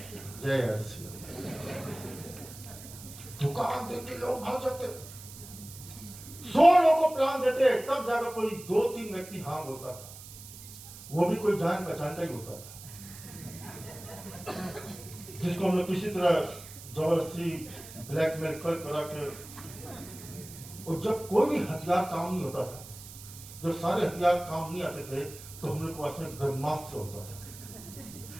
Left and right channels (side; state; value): right; noise; hiss, 15 dB below the sound